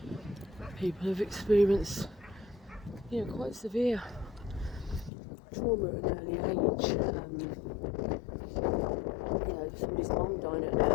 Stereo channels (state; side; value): drops out; right; at 5.1 s